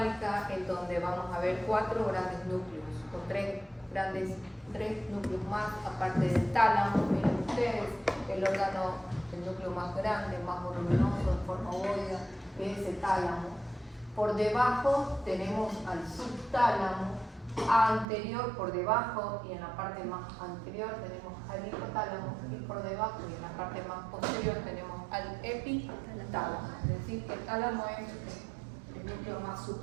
en donde vamos a ver 4 grandes núcleos, o 3 núcleos más, aparte del tálamo. Miren ustedes, el núcleo más grande, más voluminoso, en forma ovoide, que es el tálamo. Por debajo tenemos al subtálamo, anterior por debajo, y en la parte más anterior tenemos al hipotálamo, y por debajo y en la parte más posterior tenemos al epitálamo. Es decir, que el tálamo es el núcleo más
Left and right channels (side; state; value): left; drops out; at 18.1 s